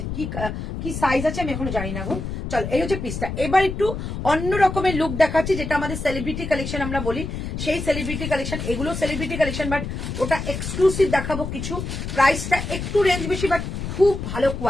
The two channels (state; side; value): noise; left; rumble, 5 dB below the sound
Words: কি সাইজ আছে আমি এখনো জানি না গো। চল, এই হচ্ছে পিসটা। এবার একটু অন্য রকমের লুক দেখাচ্ছি, যেটা আমাদের সেলিব্রিটি কালেকশন আমরা বলি, সেই সেলিব্রিটি কালেকশন। এগুলো সেলিব্রিটি কালেকশন, বাট ওটা এক্সক্লুসিভ দেখাবো কিছু। প্রাইসটা একটু রেঞ্জ বেশি, বাট খুব ভালো